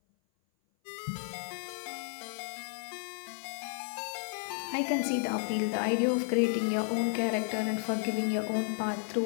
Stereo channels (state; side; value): silent; right; 56 dB below the other